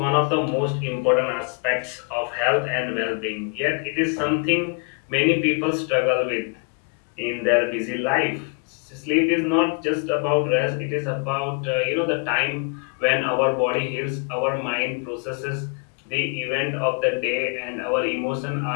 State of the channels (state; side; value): quieter; right; 36.7 dB